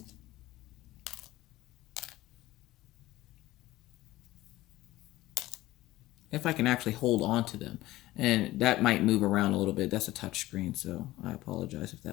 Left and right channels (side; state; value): right; quieter; 17.0 dB